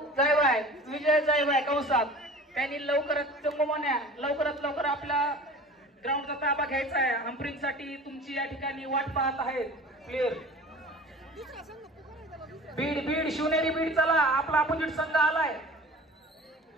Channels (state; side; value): normal; both; correlation 0.41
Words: जायवाय, विजय जायवाय कंसात, त्यांनी लवकरात चंबू मान्या लवकरात लवकर आपला ग्राउंडचा ताबा घ्यायचा आहे. हंपरिंग साठी तुमची या ठिकाणी वाट पाहत आहेत प्लेयर. बीड बीड शिवनेरी बीड. चला आपला अपोजिट संघ आलाय.